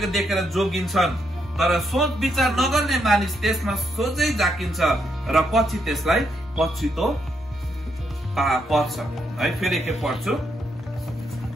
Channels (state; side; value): normal; both; correlation 0.78